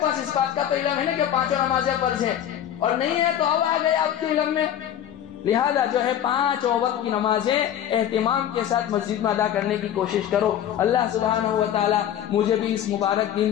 اس بات کا تو علم ہے نا کہ 5 نمازیں فرض ہے، اور نہیں ہے تو اب آ گئے آپ کے علم میں۔ لہذا جو ہے 5 وقت کی نمازیں اہتمام کے ساتھ مسجد میں ادا کرنے کی کوشش کرو۔ اللہ سبحانہ و تعالی مجھے بھی اس مبارک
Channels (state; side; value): quieter; right; 10.6 dB